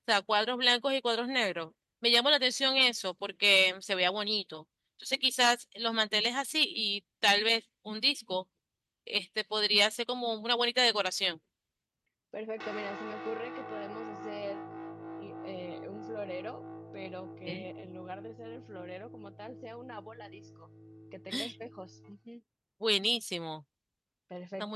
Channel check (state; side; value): identical; both; correlation 1.00